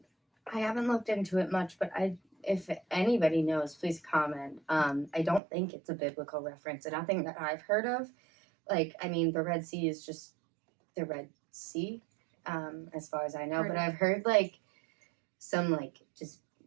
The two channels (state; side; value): drops out; left; at 5.4 s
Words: haven't looked into it much, but if anybody knows, please comment. I don't think it's a biblical reference, and nothing that I've heard of. Like, I mean, the Red Sea is just the Red Sea, as far as I know. But I've heard, like, some, like, just